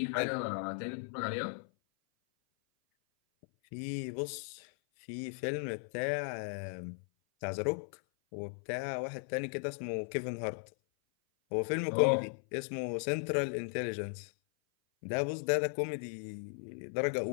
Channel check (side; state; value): right; silent; 53 dB below the other